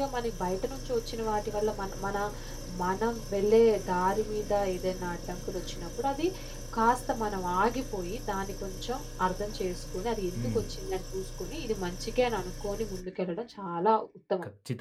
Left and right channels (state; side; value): identical; both; correlation 1.00